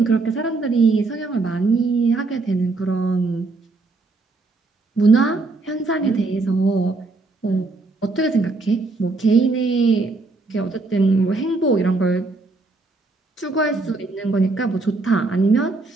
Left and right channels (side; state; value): left; quieter; 3.5 dB